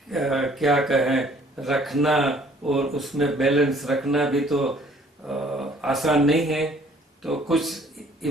क्या कहें रखना और उसमें बैलेंस रखना भी तो आसान नहीं है। तो कुछ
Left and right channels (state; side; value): normal; both; correlation 0.58